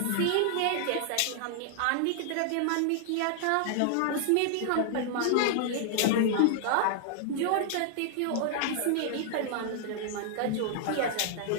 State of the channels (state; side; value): different; both; correlation -0.01